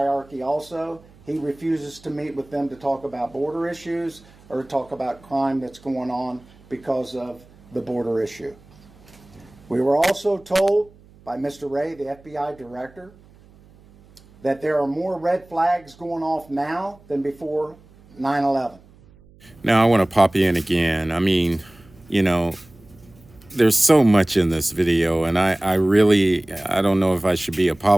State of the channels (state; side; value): noise; right; hum, 26 dB below the sound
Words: also. He refuses to meet with them to talk about border issues or talk about crime that's going on because of the border issue. We were also told by Mr. Ray, the FBI director, that there are more red flags going off now than before 9/11. Now I want to pop in again. I mean, there's so much in this video, and I don't know if I should be